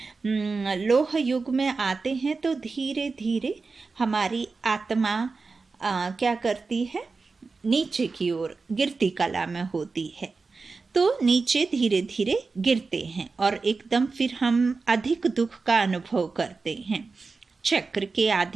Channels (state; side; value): quieter; left; 4.2 dB